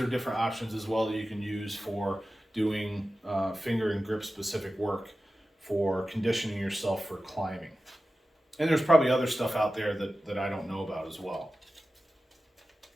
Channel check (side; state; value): both; normal; correlation 0.94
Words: different options as well that you can use for doing finger and grip specific work for conditioning yourself for climbing. And there's probably other stuff out there that I don't know about as well.